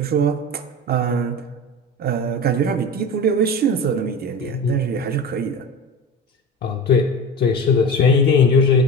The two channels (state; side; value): normal; both; correlation 0.29